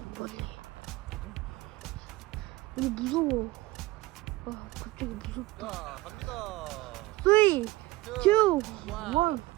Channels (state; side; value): quieter; left; 19.4 dB